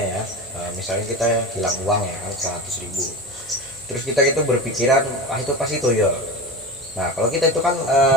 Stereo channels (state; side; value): normal; both; correlation 0.28